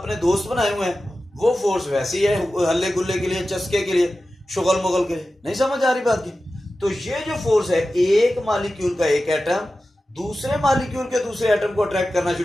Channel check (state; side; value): normal; both; correlation 0.94